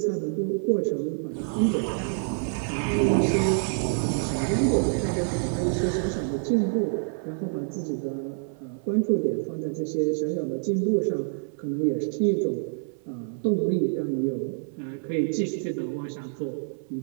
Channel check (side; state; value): left; silent; 59 dB below the other